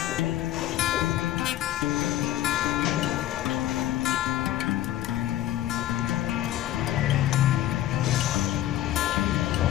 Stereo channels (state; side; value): quieter; right; 13.5 dB